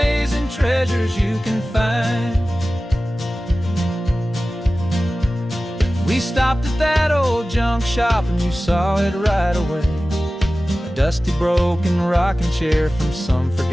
treasures you can find. We stopped at that old junk shop and you saw it right away, a dusty, broken rocking chair from some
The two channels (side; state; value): both; normal; correlation 0.96